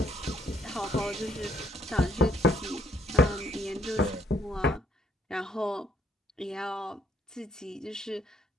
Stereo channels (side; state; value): both; normal; correlation 0.68